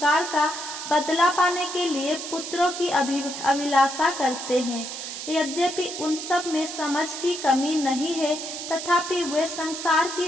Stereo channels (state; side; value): noise; right; hiss, 7 dB below the sound